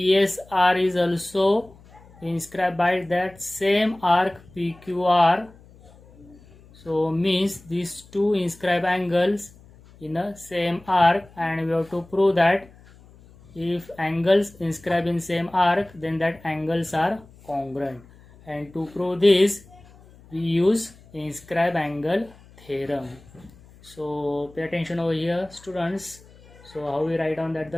is also inscribed by that same arc PQR. So means these two inscribed angles in a same arc, and we have to prove that if angles inscribed in same arc, then that angles are congruent, and to prove this we use inscribed angle theorem. So pay attention over here students. So how we write down that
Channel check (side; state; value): left; noise; hum, 24 dB below the sound